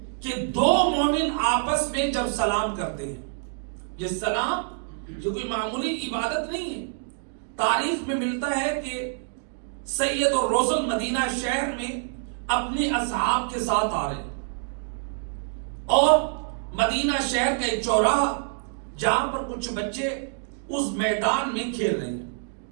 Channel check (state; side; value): silent; left; digital silence